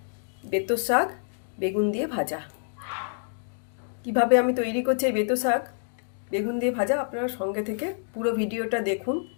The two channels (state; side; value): silent; right; digital silence